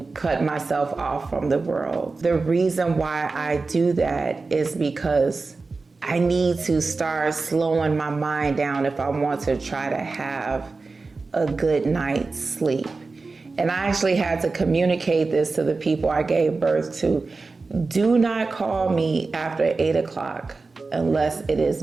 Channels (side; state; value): left; quieter; 3.9 dB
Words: cut myself off from the world. The reason why I do that is because I need to start slowing my mind down if I want to try to have a good night's sleep. And I actually had to communicate this to the people I gave birth to. Do not call me after 8 o'clock unless it is